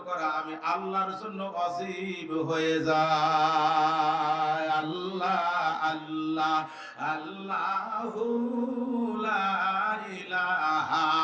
করা আমি আল্লাহর জন্য ওয়াজিব হয়ে যায়। আল্লাহ আল্লাহ আল্লাহু লা ইলাহা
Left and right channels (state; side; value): identical; both; correlation 1.00